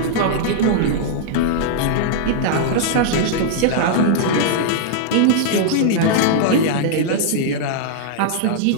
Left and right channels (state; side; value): different; both; correlation -0.01